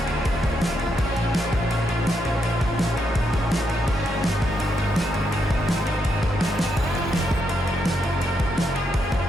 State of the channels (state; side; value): normal; both; correlation 0.80